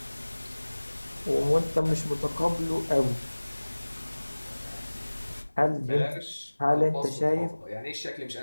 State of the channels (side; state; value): both; inverted; correlation -1.00